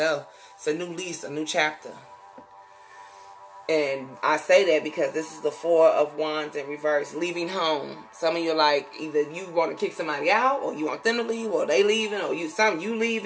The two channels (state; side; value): identical; both; correlation 1.00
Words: It's a new lease, a new chapter. And I say that because this is the Four of Wands in reverse. Leaving home. Some of you are like, either you want to kick somebody out, or you want them to leave, or they leaving, or you